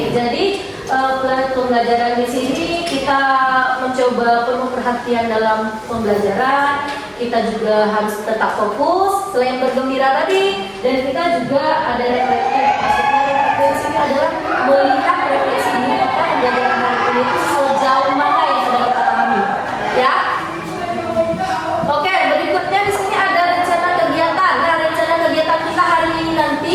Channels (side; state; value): both; identical; correlation 1.00